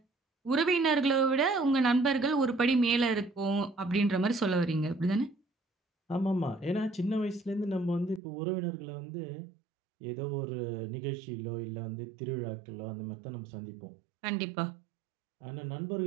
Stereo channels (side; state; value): left; drops out; at 8.2 s